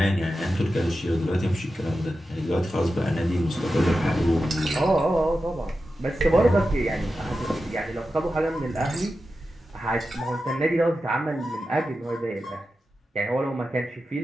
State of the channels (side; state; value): both; normal; correlation 0.91